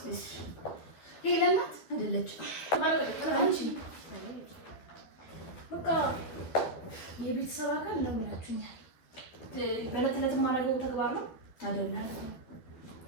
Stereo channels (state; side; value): late; right; 12 ms